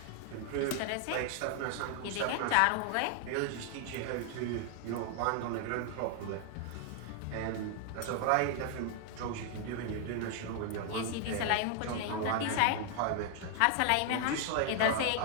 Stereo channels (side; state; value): both; different; correlation 0.00